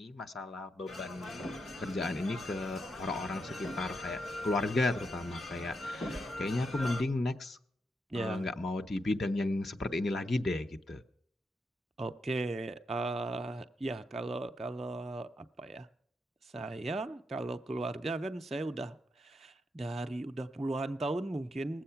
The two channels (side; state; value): both; normal; correlation 0.83